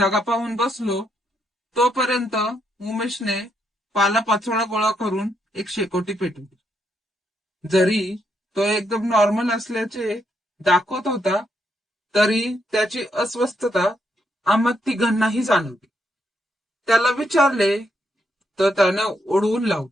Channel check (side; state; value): both; normal; correlation 0.77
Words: पाहून बसलो. तोपर्यंत उमेशने पालापाचोळा गोळा करून एक शेकोटी पेटवली. जरी तो एकदम नॉर्मल असल्याचे दाखवत होता, तरी त्याची अस्वस्थता आम्हा तिघांनाही जाणवली. त्याला विचारले तर त्यानं ओढवून